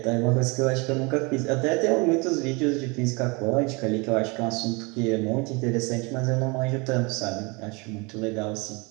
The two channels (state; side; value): quieter; left; 28.3 dB